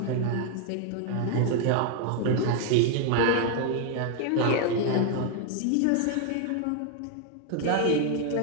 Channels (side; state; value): both; different; correlation 0.00